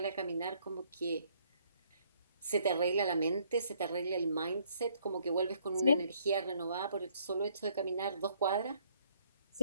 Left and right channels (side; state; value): both; inverted; correlation -0.66